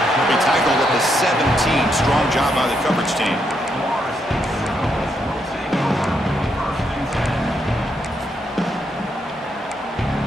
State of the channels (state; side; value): normal; both; correlation 0.78